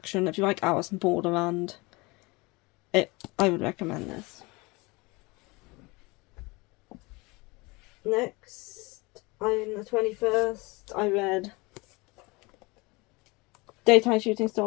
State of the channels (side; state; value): right; quieter; 25.0 dB